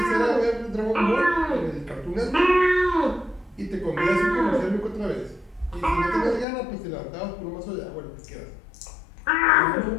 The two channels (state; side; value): drops out; right; at 6.5 s